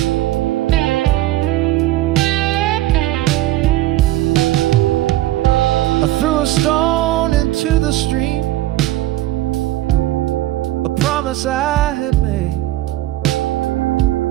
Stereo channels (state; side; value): quieter; left; 15.6 dB